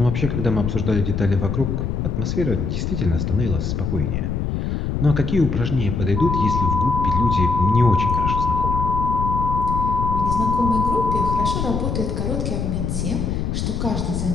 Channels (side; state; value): left; noise; rumble, 1 dB below the sound